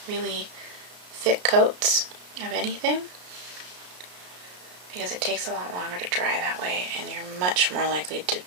really thick coats of anything, because it takes a lot longer to dry that way and you're much more likely to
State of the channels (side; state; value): left; late; 33 ms